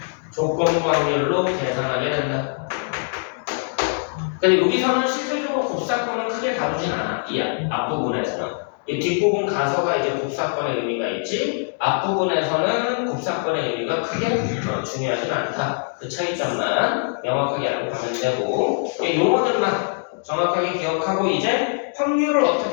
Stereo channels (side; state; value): right; silent; 64 dB below the other